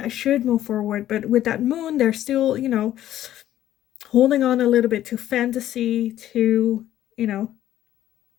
should move forward. But with that Moon, they're still, holding on a little bit to fantasy, to,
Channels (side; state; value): right; quieter; 12.6 dB